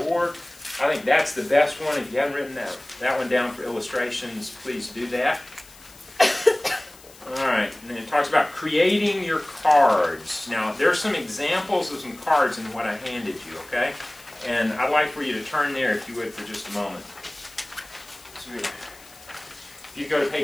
I think that's the best one. If you haven't written that one down for illustrations, please do that. All right, and then it talks about creating your cards. Now, there's some examples of some cards in what I handed you, okay? And I'd like for you to turn there, if you would, for just a moment. So, if you go to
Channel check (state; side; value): noise; left; hiss, 22 dB below the sound